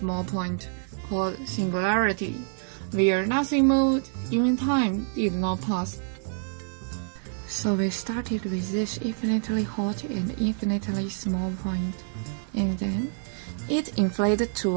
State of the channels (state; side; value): silent; left; 60 dB below the other